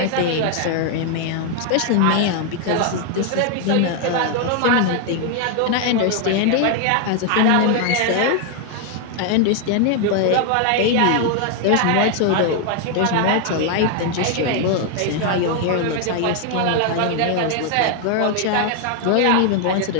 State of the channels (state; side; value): different; both; correlation 0.00